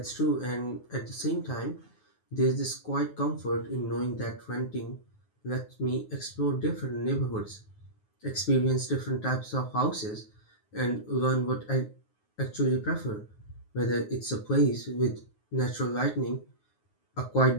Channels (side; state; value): right; late; 9.6 ms